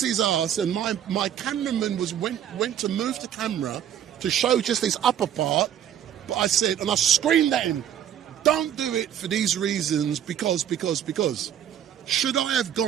his ass, and my cameraman went to move the camera to show just his upper part, but I said, and I screamed at him, don't do it for these reasons, because. Should I have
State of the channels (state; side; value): quieter; left; 9.9 dB